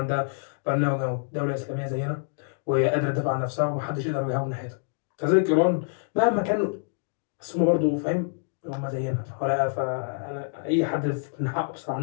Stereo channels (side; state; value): right; silent; digital silence